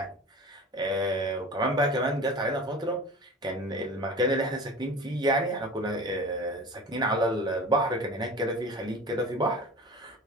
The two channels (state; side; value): normal; both; correlation 0.37